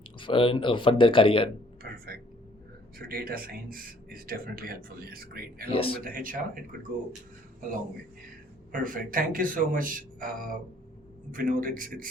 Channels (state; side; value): normal; both; correlation 0.60